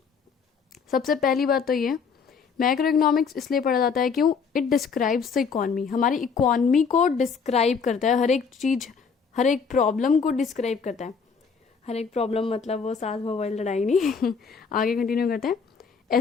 सबसे पहली बात तो ये, मैक्रो इकोनॉमिक्स इसलिए पढ़ा जाता है क्यों? It describes the economy. हमारी इकोनॉमी को डिस्क्राइब करता है, हर एक चीज, हर एक प्रॉब्लम को डिस्क्राइब करता है। हर एक प्रॉब्लम मतलब वो सास मोबाइल लड़ाई नहीं आगे कंटिन्यू करते हैं।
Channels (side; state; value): right; quieter; 5.8 dB